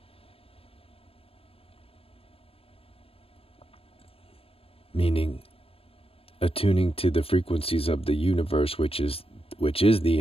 Meaning attuning to the frequencies of the universe, which is the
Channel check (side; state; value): right; late; 0.28 ms